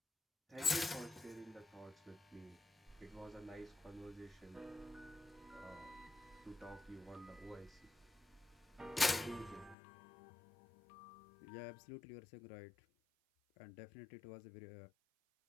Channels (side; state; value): right; drops out; at 9.8 s